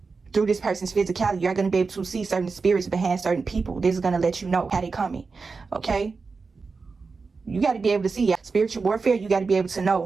through this person's physicality. You're going to be able to see certain spirits behind certain people. This is going to let you know how they coming, okay? You got to be able to see spiritual warfare. You got to be able to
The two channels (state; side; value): quieter; left; 4.5 dB